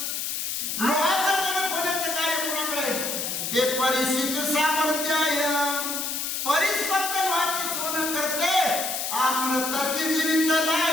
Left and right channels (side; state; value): left; noise; hiss, 2 dB below the sound